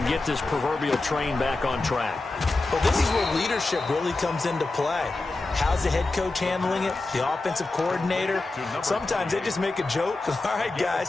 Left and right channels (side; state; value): right; quieter; 3.2 dB